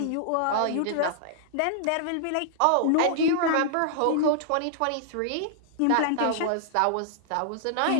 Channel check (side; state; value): both; different; correlation -0.01